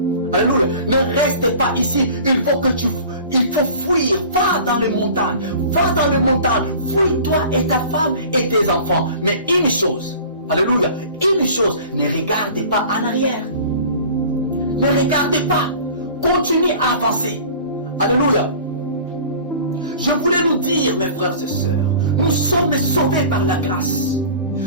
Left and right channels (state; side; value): inverted; both; correlation -0.42